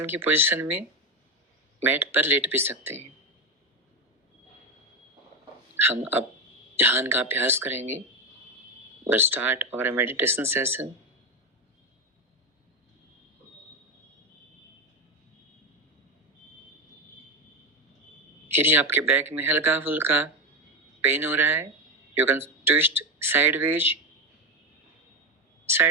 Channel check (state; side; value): normal; both; correlation 0.13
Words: की पोजीशन में मैट पर लेट भी सकते हैं। हम अब ध्यान का अभ्यास करेंगे। We'll start our meditation session। यदि आपके बैक में हल्का फुल्का पेन हो रहा है, you can twist